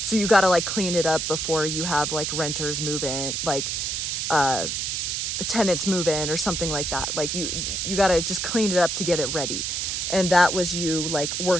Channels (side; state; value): right; noise; hiss, 1 dB below the sound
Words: you got to like clean it up before you have like renters move in, like tenants move in or something like that. Like you got to just clean it up to get it ready. And that was you like